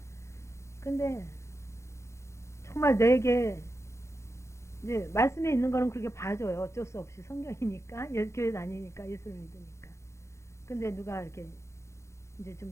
근데 정말 내게 이제 말씀에 있는 거는 그렇게 봐줘요. 어쩔 수 없이 성경이니까 교회 다니니까 예수를 믿으니까. 근데 누가 이렇게 이제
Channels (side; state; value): right; late; 0.13 ms